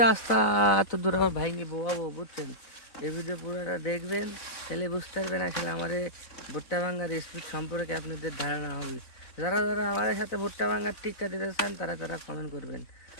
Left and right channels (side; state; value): right; late; 4.0 ms